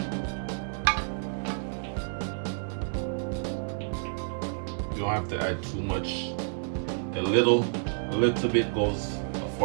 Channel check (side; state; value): left; silent; digital silence